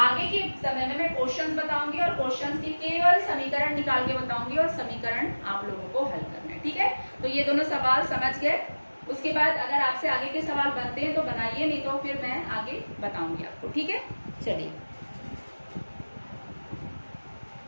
के समय में मैं क्वेश्चंस बताऊंगी और क्वेश्चंस के केवल समीकरण निकाल के बताऊंगी और समीकरण आप लोगों को हल करना है, ठीक है। तो ये दोनों सवाल समझ गए। उसके बाद अगर आपसे आगे के सवाल बनते हैं तो बनाइए, नहीं तो फिर मैं आगे बताऊंगी आपको, ठीक है। चलिए।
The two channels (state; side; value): inverted; both; correlation -1.00